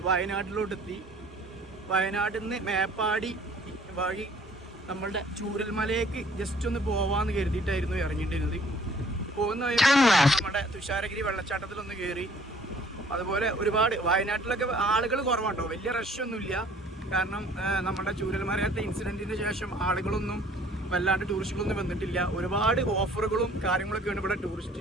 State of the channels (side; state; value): both; normal; correlation 0.56